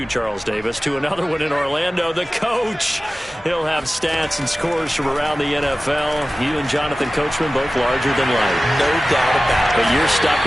Charles Davis, to another one in Orlando, the coach. He'll have stats and scores from around the NFL. You and Jonathan Coachman, both larger than life. No doubt about it. But you're stuck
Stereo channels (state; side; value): normal; both; correlation 0.96